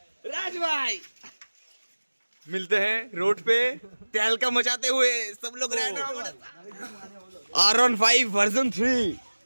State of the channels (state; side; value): inverted; both; correlation -1.00